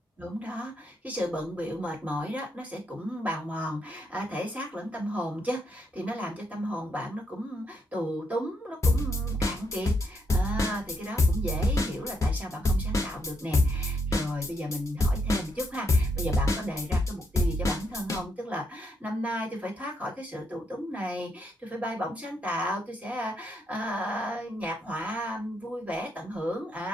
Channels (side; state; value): both; normal; correlation 0.78